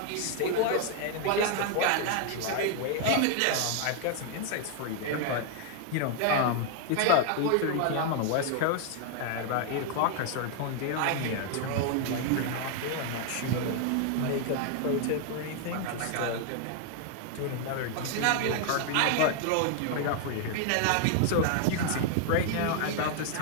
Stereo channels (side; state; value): both; different; correlation 0.00